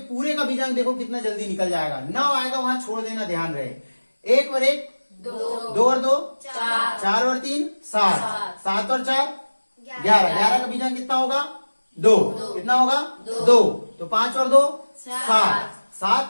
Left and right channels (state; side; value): inverted; both; correlation -1.00